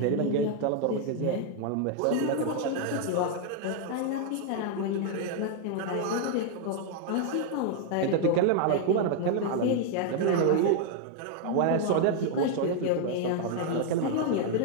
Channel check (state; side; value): different; both; correlation 0.00